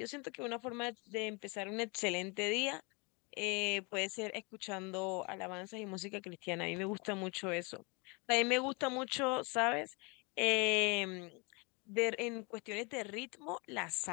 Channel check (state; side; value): quieter; right; 30.0 dB